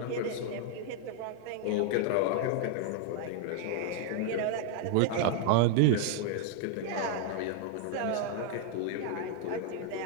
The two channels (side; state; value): both; different; correlation 0.00